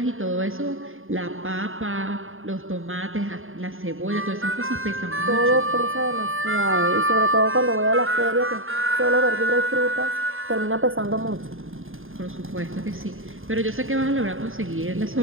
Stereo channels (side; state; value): left; late; 0.59 ms